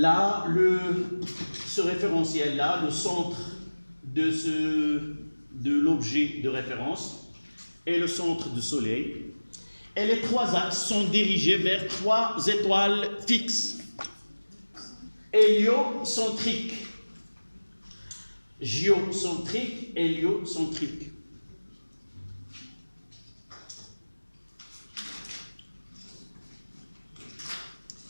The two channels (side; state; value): both; inverted; correlation -1.00